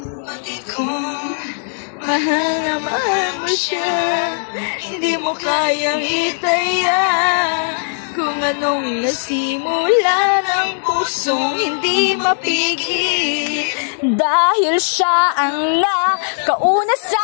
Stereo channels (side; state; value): right; silent; 67 dB below the other